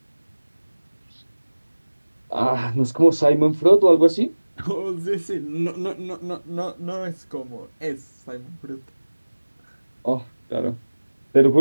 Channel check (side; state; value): both; inverted; correlation -1.00